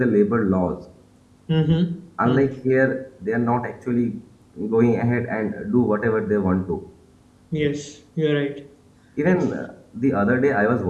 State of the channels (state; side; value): identical; both; correlation 1.00